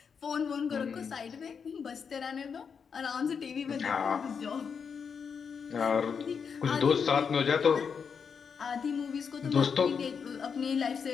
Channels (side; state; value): right; quieter; 6.3 dB